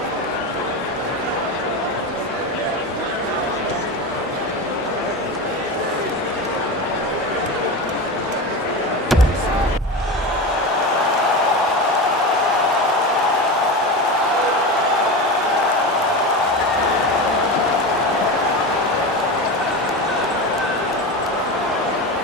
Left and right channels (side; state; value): both; normal; correlation 0.23